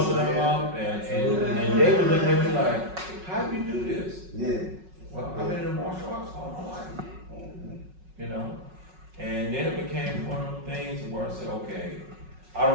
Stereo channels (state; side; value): late; left; 5.4 ms